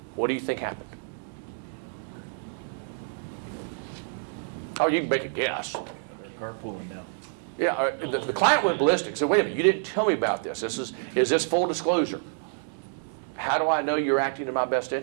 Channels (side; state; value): left; silent; digital silence